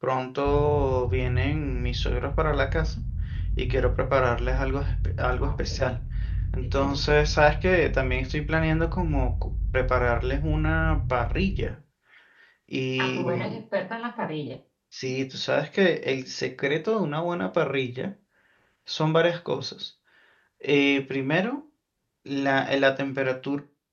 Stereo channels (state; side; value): identical; both; correlation 1.00